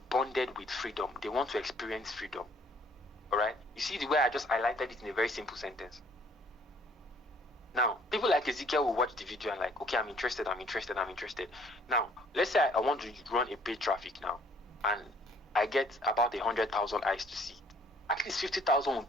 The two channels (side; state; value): both; normal; correlation 0.59